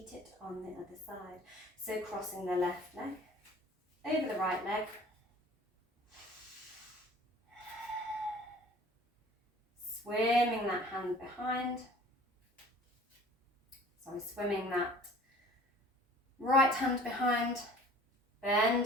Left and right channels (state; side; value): normal; both; correlation 0.48